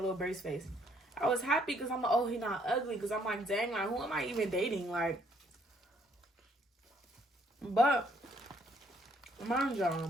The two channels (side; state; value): both; normal; correlation 0.67